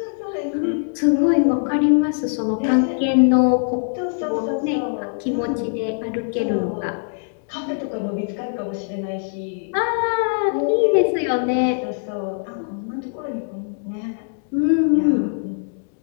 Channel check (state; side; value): silent; right; digital silence